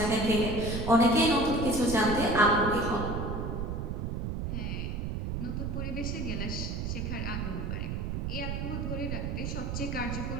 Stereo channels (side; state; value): right; noise; rumble, 3 dB below the sound